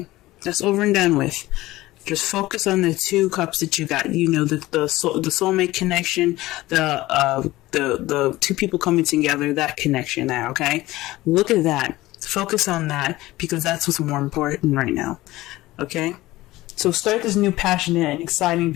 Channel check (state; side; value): quieter; right; 17.8 dB